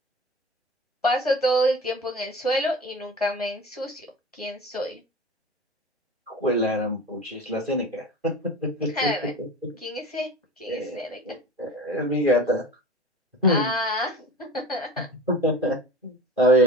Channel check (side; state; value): both; normal; correlation 0.35